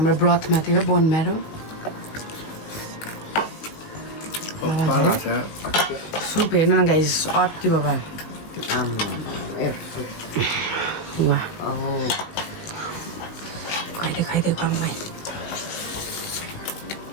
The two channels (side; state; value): right; late; 19 ms